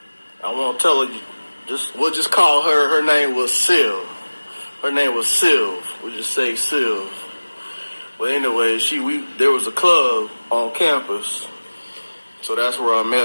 I want to tell her, we'll just call her, her name was Sylv. Her name was Sylv. We'll just say Sylv. But anyway, there was a club on campus, so that's where I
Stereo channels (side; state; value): both; inverted; correlation -1.00